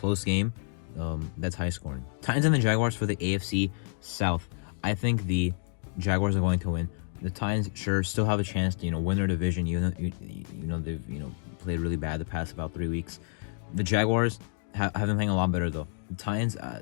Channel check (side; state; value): right; silent; digital silence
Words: game that's high scoring. Titans and the Jaguars for the AFC South. I think the Jaguars are going to win. The Titans sure still have a chance to win their division, even though they've played really bad the past about 3 weeks. The Jaguars have been playing a lot better though. The Titans,